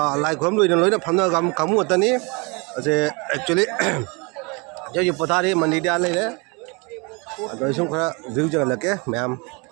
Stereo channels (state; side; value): quieter; left; 29.6 dB